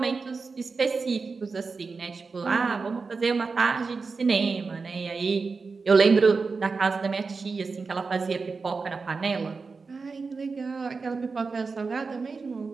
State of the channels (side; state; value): left; quieter; 4.5 dB